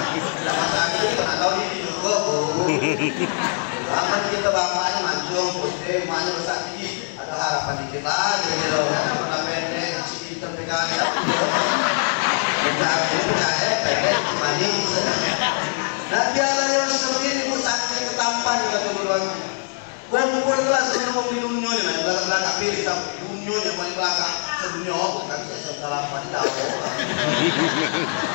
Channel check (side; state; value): right; silent; 63 dB below the other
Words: Tidak masalah kita nggak tahu ini juga bu. Aman kita bapaknya mancung, putih, mana besar tinggi. Ada harapan dikit lagi gitu. Karena pendek, si hitam PKI. Nabi Allah Yusuf ini saking ketampan kata duluannya. Kumpul kelas sebelum di dunia ini, belakang pilih tapi dunia yang paling belakang sedunia kan saya salah apa tidak ada.